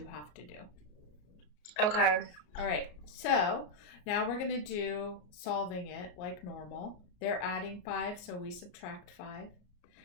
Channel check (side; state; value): right; late; 34 ms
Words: have to do. Okay. All right, so now we're going to do solving it like normal. They're adding 5, so we subtract 5.